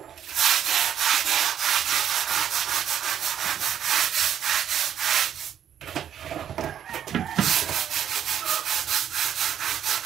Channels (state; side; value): quieter; left; 9.5 dB